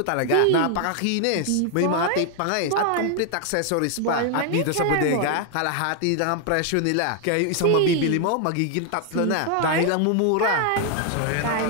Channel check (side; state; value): both; different; correlation 0.00